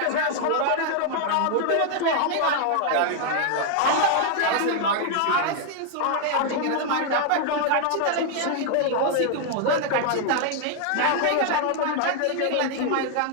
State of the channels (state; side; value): different; both; correlation 0.00